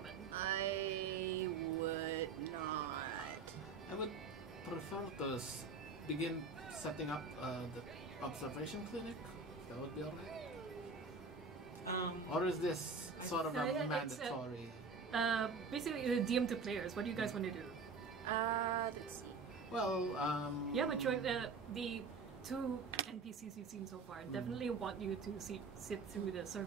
I would not. I would prefer to begin setting up the observation clinic. That would be alright. Or is this sort of a mandatory? Basically, the DM to players. What do you guys want to do? Let's see. Well, Yeah, but the two NPCs you've seen so far definitely want you to sit through the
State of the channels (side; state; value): left; quieter; 4.5 dB